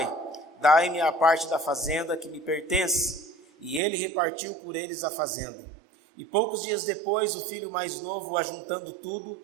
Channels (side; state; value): left; drops out; at 3.8 s